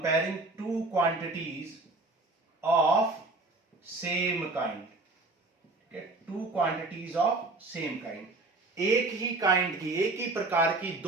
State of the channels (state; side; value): quieter; left; 3.2 dB